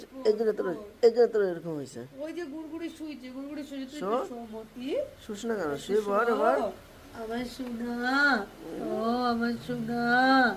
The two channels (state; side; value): identical; both; correlation 1.00